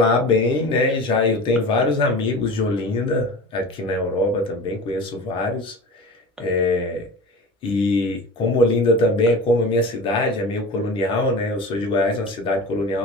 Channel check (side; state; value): both; normal; correlation 0.34